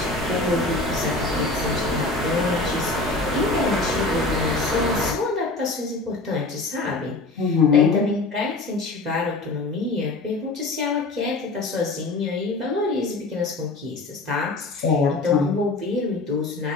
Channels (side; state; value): right; quieter; 3.2 dB